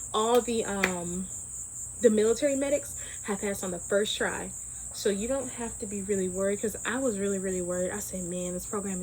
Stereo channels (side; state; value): both; identical; correlation 1.00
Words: All the military medics have passed on the first try. So you don't have to be really worried, because I was really, really worried. I said, man, this program